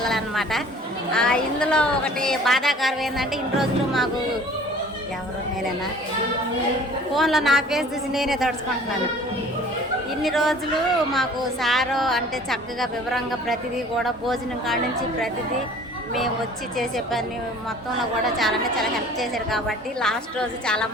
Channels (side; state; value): both; normal; correlation 0.48